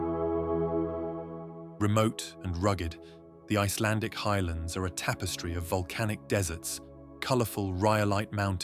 Remote and rugged, the Icelandic highlands are a tapestry of volcanic deserts, colourful rhyolite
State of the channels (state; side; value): identical; both; correlation 1.00